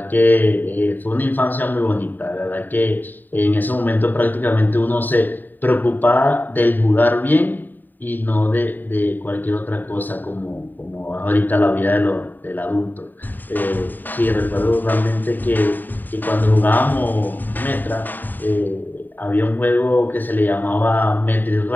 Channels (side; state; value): right; late; 0.089 ms